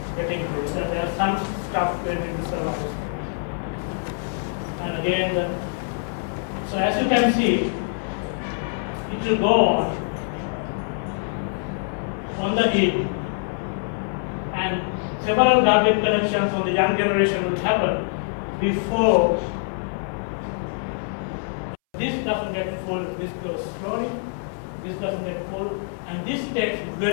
getting increased, and there are some stuff going in the survivor space. And again, so as you can see, it will go on on the heap, and several garbage collections on the young generation will happen before this doesn't get full, this goes slowly, this doesn't get full, and this takes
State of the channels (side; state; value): right; silent; 62 dB below the other